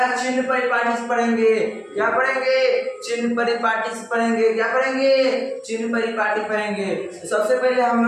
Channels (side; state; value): both; identical; correlation 1.00